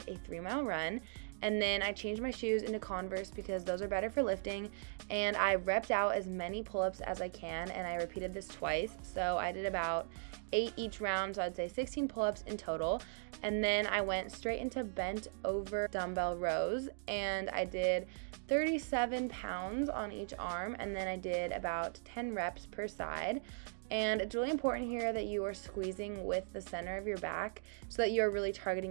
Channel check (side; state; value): left; silent; digital silence